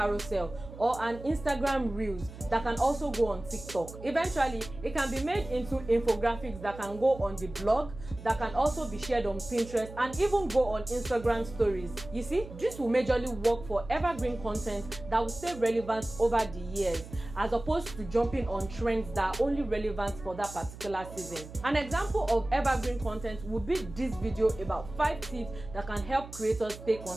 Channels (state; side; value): noise; right; hum, 14 dB below the sound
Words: or an Instagram Reels that can also go on TikTok. Eventually, it can be made into infographics that can go on the blog, that can also be shared on Pinterest, and even go on Instagram stories. You see, this will majorly work for evergreen content that will stay relevant over the years, as opposed to jumping on trends that are only relevant for that particular season. An example of evergreen content would be this video about 5 tips that can help creators stay